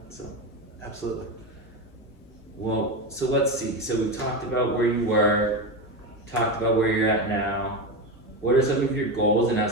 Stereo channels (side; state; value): both; normal; correlation 0.17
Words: So, absolutely. Well, so let's see. So we talked about where you were, talked about where you're at now. What are some of your goals and